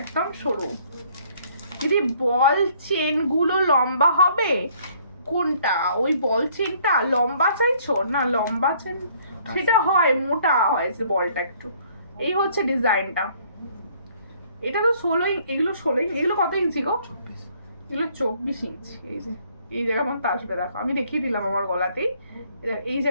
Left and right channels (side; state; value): both; inverted; correlation -0.61